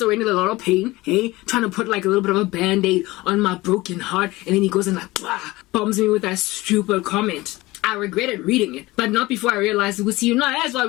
already in a lot of pain. Trying to put like a little bit of a band-aid on my broken heart. And then he goes and like, bombs me with that stupid comment. I regretted reading it, but not before I realized it was you. No, that's why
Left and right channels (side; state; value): right; quieter; 20.0 dB